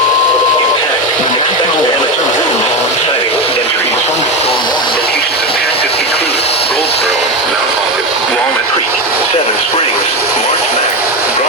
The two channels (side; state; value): both; normal; correlation 0.17